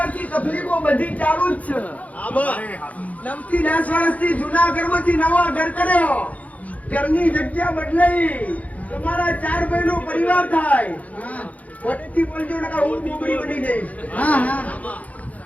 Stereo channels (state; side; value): late; right; 0.071 ms